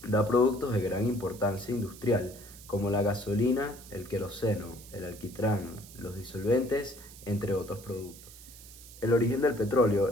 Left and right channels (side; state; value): right; noise; hiss, 18 dB below the sound